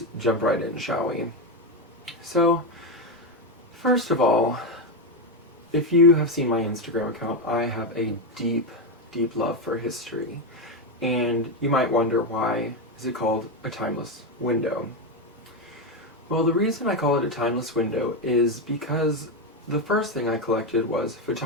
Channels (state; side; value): normal; both; correlation 0.09